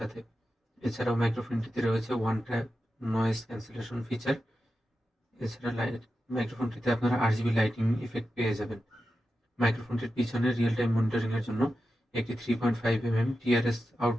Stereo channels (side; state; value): both; normal; correlation 0.91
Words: সাথে। এছাড়াও মাইক্রোফোনটিতে রয়েছে one tap noise cancellation feature. এছাড়া মাইক্রোফোনটিতে আপনারা RGB লাইটিং ইফেক্ট পেয়ে যাবেন। মাইক্রোফোনটির পিছনে রিয়েল টাইম মনিটরিং এর জন্য একটি 3.5 mm TRS